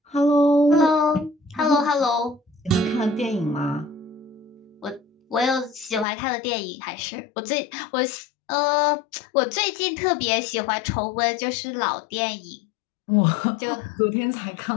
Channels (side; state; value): right; drops out; at 6.1 s